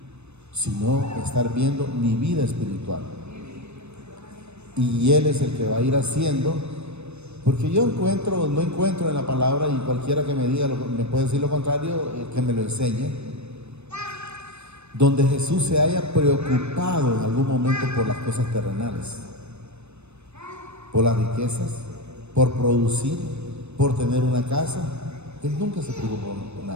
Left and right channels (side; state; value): left; late; 0.81 ms